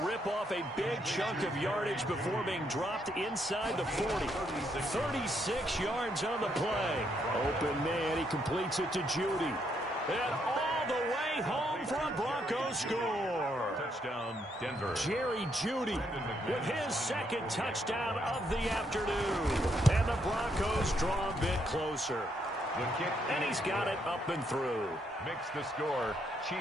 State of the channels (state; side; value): normal; both; correlation 0.75